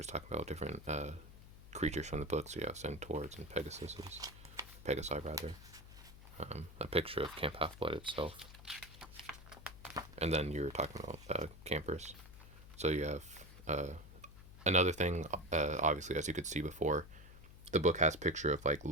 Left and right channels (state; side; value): noise; left; hum, 17 dB below the sound